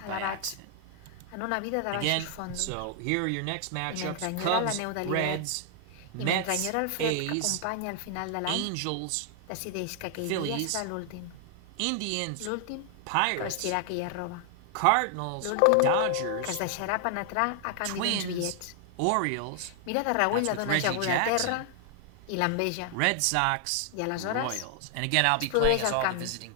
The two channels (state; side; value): different; both; correlation 0.00